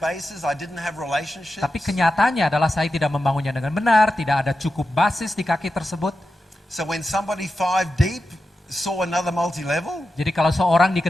I didn't have relationships. Tapi kenyataannya adalah saya tidak membangunnya dengan benar, tidak ada cukup basis di kaki tersebut. So when somebody 5 deep saw another multi-level, Jadi kalau seorang di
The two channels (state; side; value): normal; both; correlation 0.91